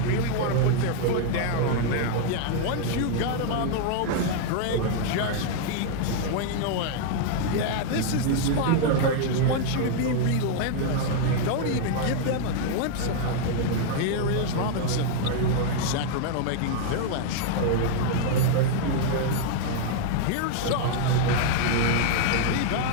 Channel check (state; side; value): different; both; correlation -0.01